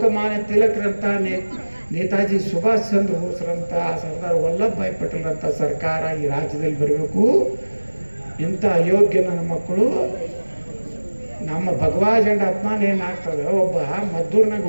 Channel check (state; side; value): inverted; both; correlation -1.00